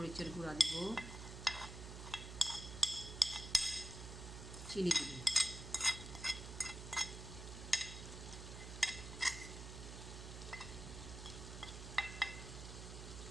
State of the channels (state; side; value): noise; right; hum, 9 dB below the sound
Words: গুঁড়া দিব, চিনি দিব।